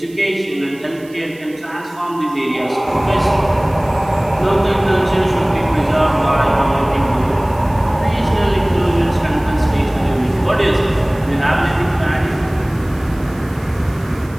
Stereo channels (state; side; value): noise; right; hiss, 25 dB below the sound